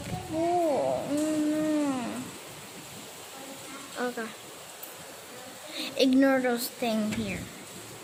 Oh no. Okay. Ignore those things here.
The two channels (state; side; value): identical; both; correlation 1.00